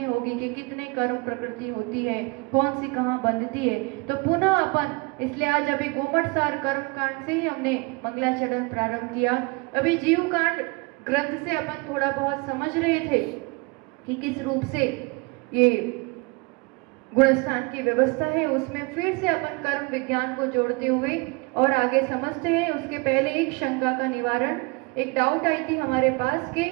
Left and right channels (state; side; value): quieter; left; 27.4 dB